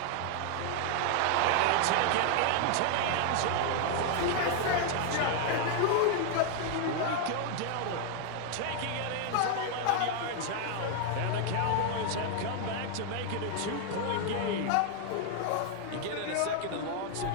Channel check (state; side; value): different; both; correlation 0.00